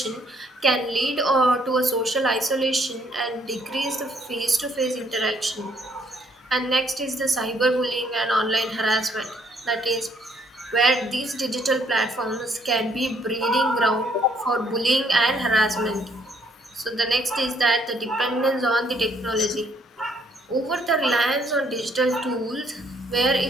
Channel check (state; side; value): normal; both; correlation 0.67